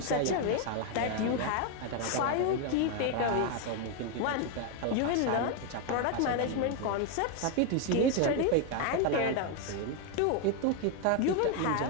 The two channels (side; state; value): both; different; correlation 0.01